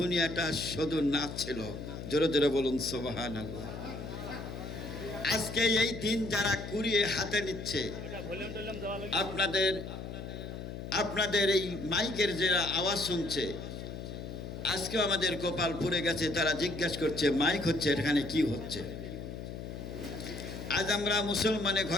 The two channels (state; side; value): noise; left; hum, 8 dB below the sound